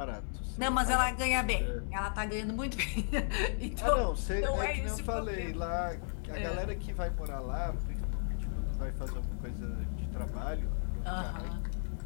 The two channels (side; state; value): right; silent; digital silence